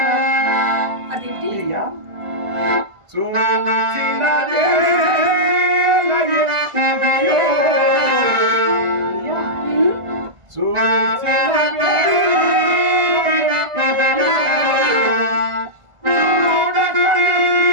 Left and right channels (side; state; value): left; late; 1.5 ms